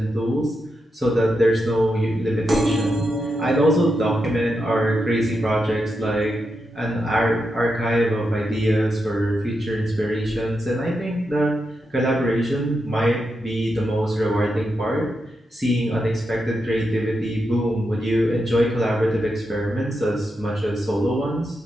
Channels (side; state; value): both; normal; correlation 0.86